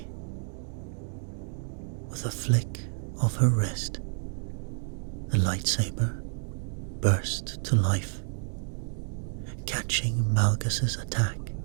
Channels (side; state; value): left; silent; digital silence